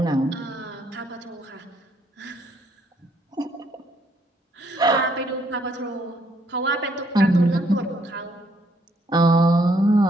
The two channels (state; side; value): normal; both; correlation 0.69